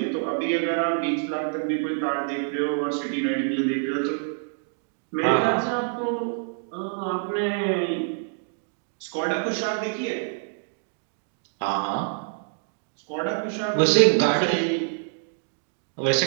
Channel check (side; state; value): left; silent; digital silence